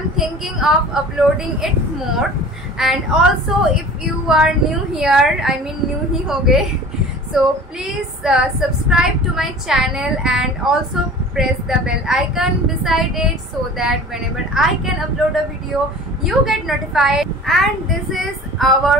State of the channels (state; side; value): normal; both; correlation 0.41